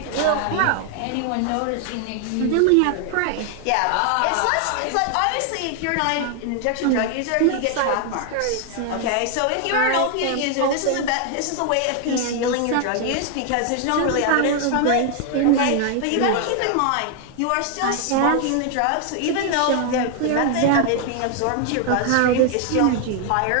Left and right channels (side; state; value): both; different; correlation 0.00